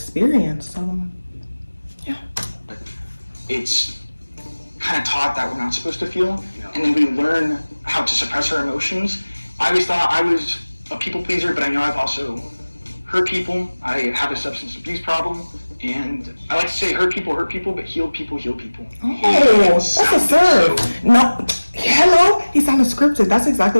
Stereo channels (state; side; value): inverted; both; correlation -1.00